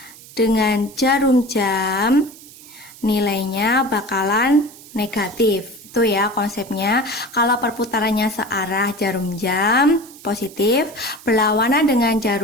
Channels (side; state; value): right; noise; hiss, 20 dB below the sound